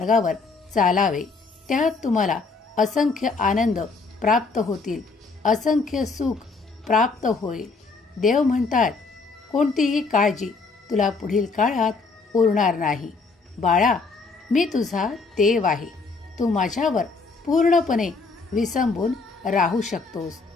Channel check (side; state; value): right; quieter; 4.2 dB